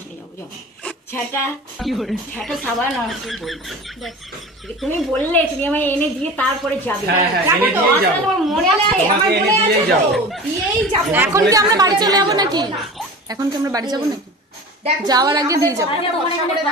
নিয়ে যাবো যাও। ঝাঁটা ঝাঁটা সাবান আর কি বলবো তুমি বললে তুমি আমায় এনে দিয়ে তারপরে যাবে। এনে দিয়েই যাবো, তোমার মনে আছে? তোমাকে এনে দিয়েই যাবো। দিয়েই যাবো। এখন কি আমরা বাড়ি চলে যাবো নাকি? এখন কি আমরা বাড়ি যাবো নাকি? যাওয়ার আগে দিয়ে যাবো।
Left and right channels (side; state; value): both; normal; correlation 0.36